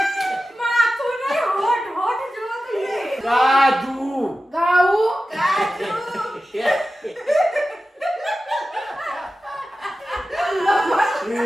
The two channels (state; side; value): normal; both; correlation 0.94